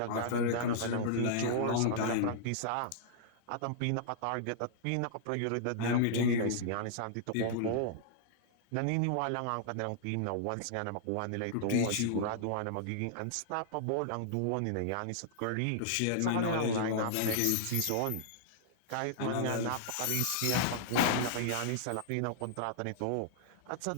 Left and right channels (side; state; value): both; different; correlation -0.01